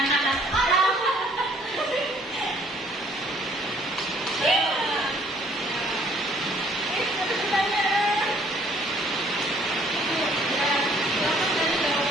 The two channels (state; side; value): normal; both; correlation 0.61